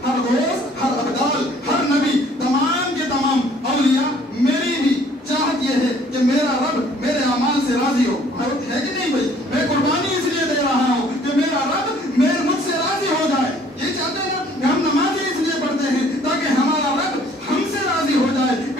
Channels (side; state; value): both; normal; correlation 0.58